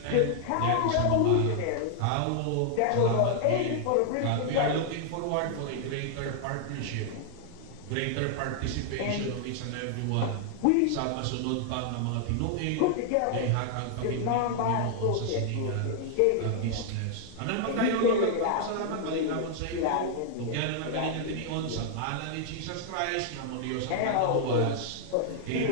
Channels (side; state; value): both; different; correlation -0.01